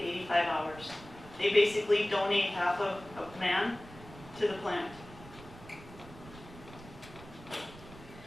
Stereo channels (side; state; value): right; noise; rumble, 18 dB below the sound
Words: 85 hours. They basically donate half of a man to the plant.